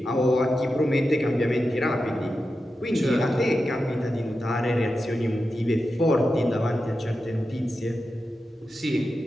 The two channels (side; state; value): both; normal; correlation 0.91